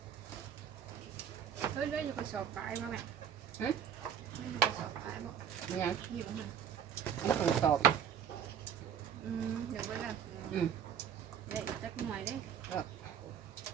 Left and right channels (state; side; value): quieter; left; 8.6 dB